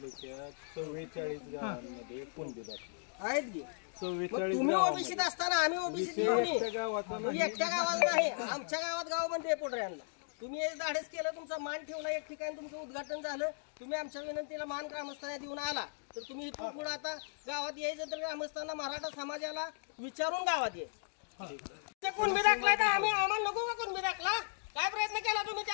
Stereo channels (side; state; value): right; silent; digital silence